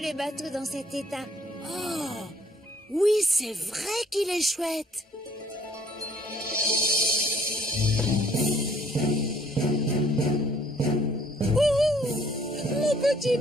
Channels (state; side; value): normal; both; correlation 0.61